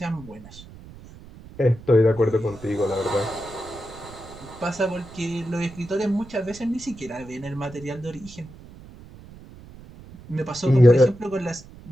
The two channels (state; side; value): noise; right; rumble, 18 dB below the sound